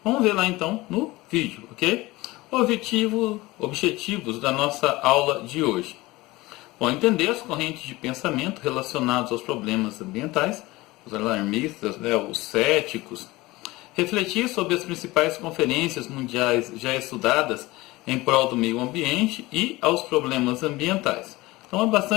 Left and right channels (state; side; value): quieter; right; 20.3 dB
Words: Vamos ver lá então no vídeo, ok? Objetivos da nossa aula de hoje. Bom, entender as correntes de pensamento relacionadas aos problemas ambientais, os alarmistas, né, os céticos, refletir sobre as principais conferências mundiais já estudadas em prol do meio ambiente e aos problemas ambientais. Então é